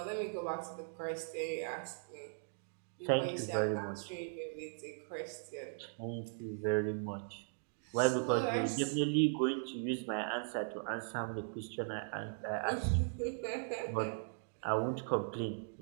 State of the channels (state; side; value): silent; left; digital silence